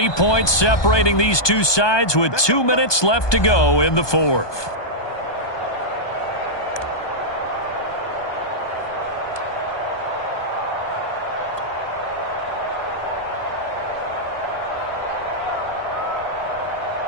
points separating these two sides with 2 minutes left to go in the 4th.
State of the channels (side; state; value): right; late; 1.2 ms